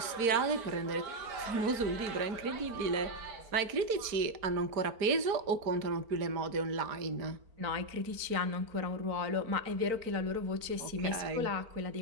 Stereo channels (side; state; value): left; late; 4.5 ms